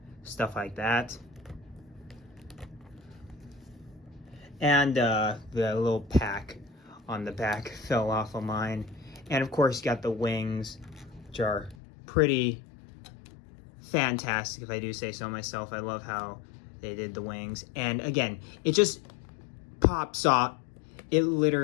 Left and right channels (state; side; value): drops out; right; at 11.8 s